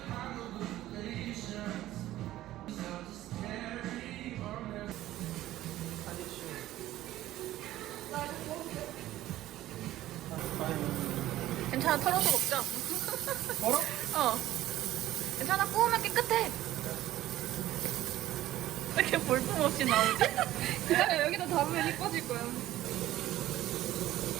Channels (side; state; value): left; quieter; 14.7 dB